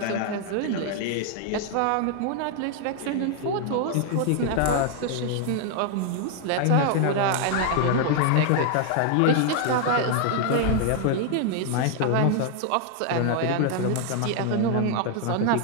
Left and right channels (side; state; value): both; different; correlation 0.00